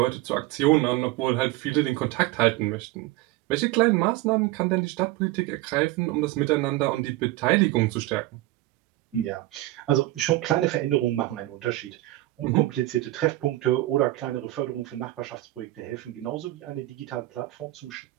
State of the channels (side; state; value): left; quieter; 17.6 dB